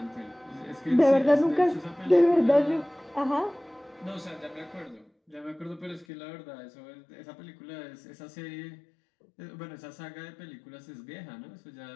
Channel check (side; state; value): right; drops out; at 6.1 s